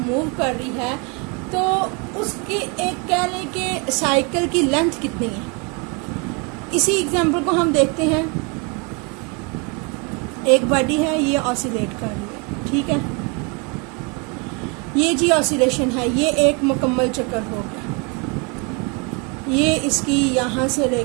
कर रही है, तो उसके एक कह लें कि साइकिल की लेंथ कितनी है। इसी एग्जांपल को हम देखते हैं। एक बॉडी है, ये ऑसिलेट कर रही है, ठीक है, ये जी ऑसिलेशन है, ये एक मुकम्मल चक्कर हो गया। ये इसकी यहाँ से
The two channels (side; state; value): left; quieter; 32.4 dB